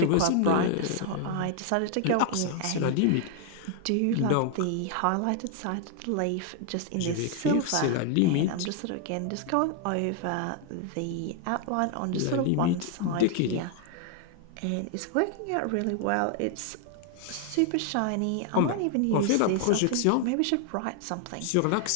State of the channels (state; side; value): different; both; correlation 0.00